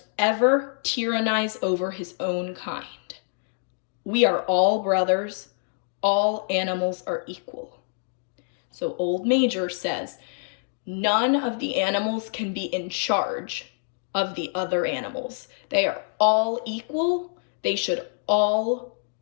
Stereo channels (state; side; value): silent; right; digital silence